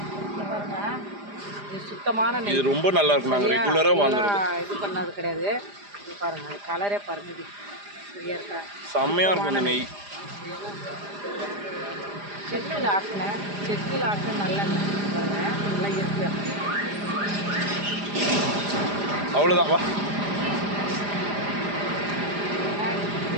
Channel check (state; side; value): late; left; 4.9 ms